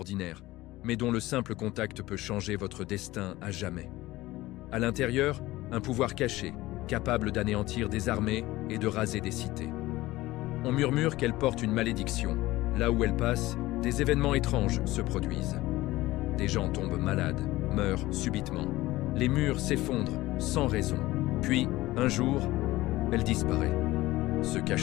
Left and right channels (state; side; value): quieter; right; 18.0 dB